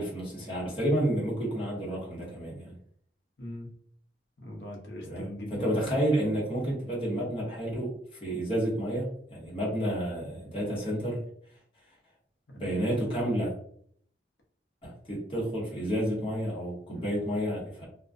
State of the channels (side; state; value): both; normal; correlation 0.67